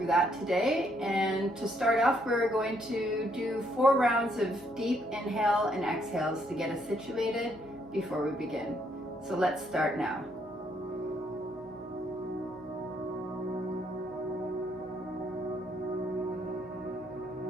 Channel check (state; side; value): noise; right; hum, 29 dB below the sound